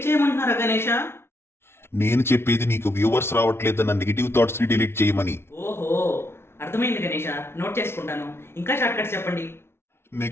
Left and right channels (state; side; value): late; right; 0.12 ms